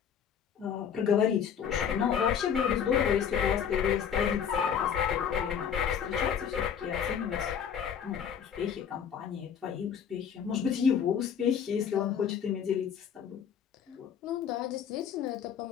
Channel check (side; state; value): right; quieter; 7.9 dB